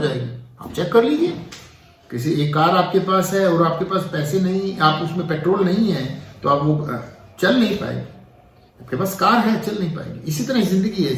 आप चेक कर लीजिए, किसी एक कार आपके पास है और आपके पास पैसे नहीं, आप उसमें पेट्रोल नहीं है, तो आप वो चल नहीं पाएगी। आपके पास कार है, चल नहीं पाएगी। इसी तरह जिंदगी है।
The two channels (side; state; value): both; identical; correlation 1.00